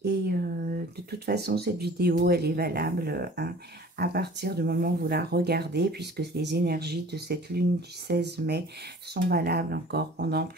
Et de toute façon, cette vidéo, elle est valable hein, à partir du moment où vous la regardez, puisque les énergies de cette lune du 16 mai sont valables encore pendant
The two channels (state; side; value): normal; both; correlation 0.47